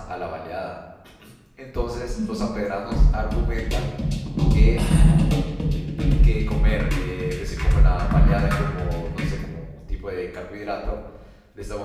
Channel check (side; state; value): both; identical; correlation 1.00